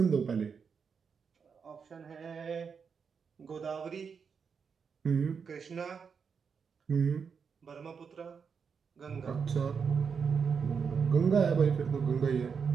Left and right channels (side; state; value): left; quieter; 6.1 dB